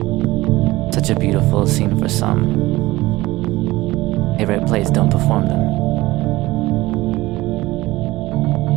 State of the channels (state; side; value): quieter; left; 18.9 dB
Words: Such a beautiful scene for some. Favorite plays don't perform them.